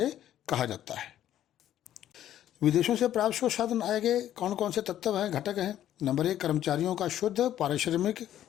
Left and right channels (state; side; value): quieter; right; 11.8 dB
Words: कहा जाता है। विदेशों से प्राप्त शुद्ध साधन आय के कौन कौन से तत्व हैं, घटक हैं? नंबर 1, कर्मचारियों का शुद्ध पारिश्रमिक।